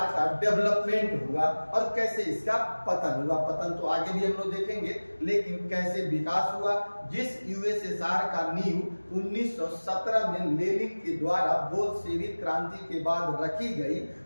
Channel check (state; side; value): inverted; both; correlation -1.00